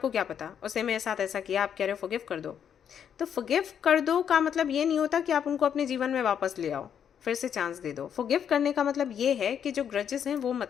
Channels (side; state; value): right; quieter; 8.4 dB